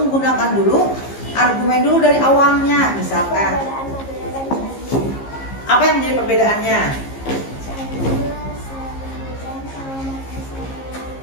dulu argumen dulu dari awalnya. Misalkan, Perbedaan Madura dan Candi. apa yang menjadi perbedaannya?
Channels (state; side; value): late; right; 15 ms